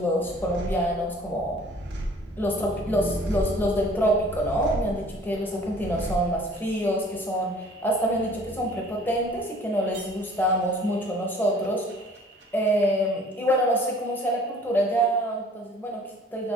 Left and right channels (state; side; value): normal; both; correlation 0.52